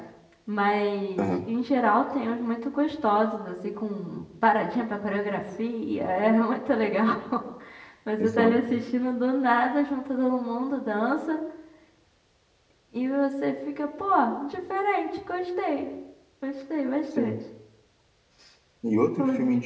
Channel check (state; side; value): identical; both; correlation 1.00